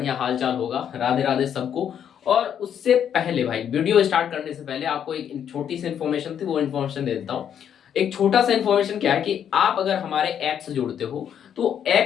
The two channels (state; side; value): quieter; right; 8.9 dB